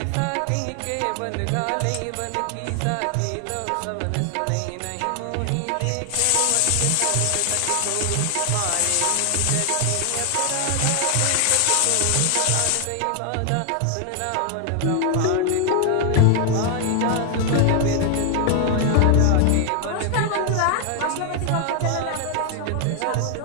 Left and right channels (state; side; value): different; both; correlation 0.00